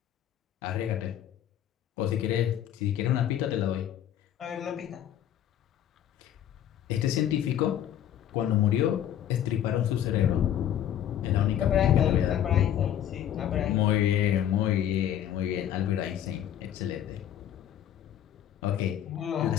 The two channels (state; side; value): quieter; right; 10.7 dB